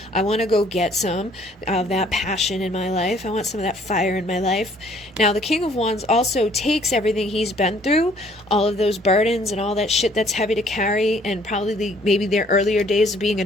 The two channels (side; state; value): both; normal; correlation 0.60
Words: I want to go get some of that passion in my life. I want some of that fire in my life. Now the King of Wands also takes everything he's been through, all of those burdens and all that shit that's heavy to carry, and probably maybe their earlier days of being a